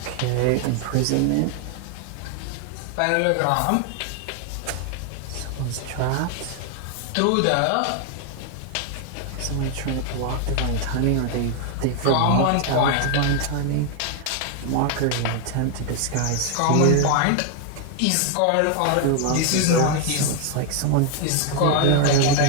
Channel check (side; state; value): both; different; correlation 0.00